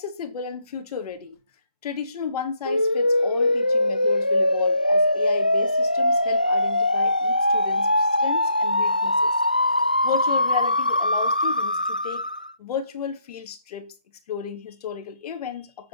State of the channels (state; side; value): inverted; both; correlation -0.75